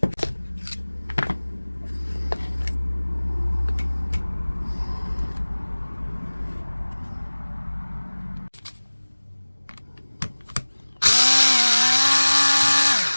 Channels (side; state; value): both; inverted; correlation -1.00